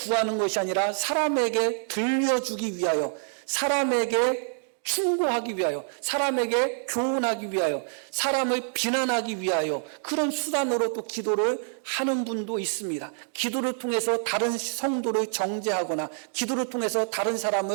것이 아니라 사람에게 들려주기 위하여 사람에게 충고하기 위하여 사람에게 교훈하기 위하여 사람을 비난하기 위하여 그런 수단으로 또 기도를 하는 분도 있습니다. 기도를 통해서 다른 성도를 정죄하거나 기도를 통해서 다른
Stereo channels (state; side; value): silent; left; digital silence